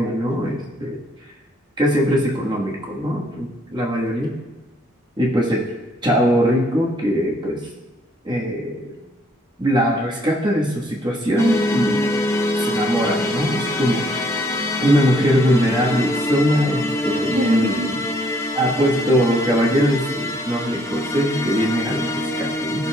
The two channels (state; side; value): normal; both; correlation 0.66